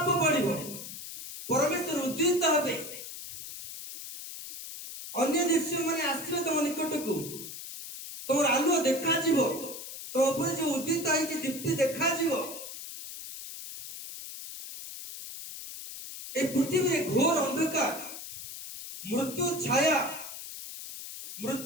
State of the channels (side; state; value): left; noise; hiss, 10 dB below the sound